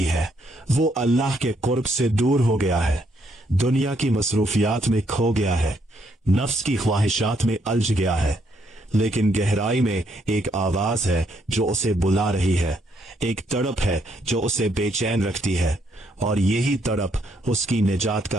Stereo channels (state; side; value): normal; both; correlation 0.73